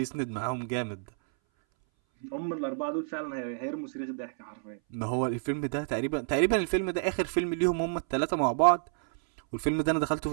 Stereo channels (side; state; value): left; silent; 58 dB below the other